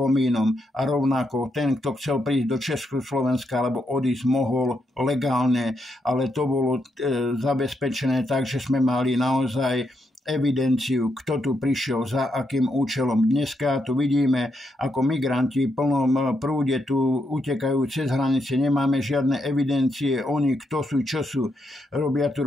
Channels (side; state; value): both; normal; correlation 0.80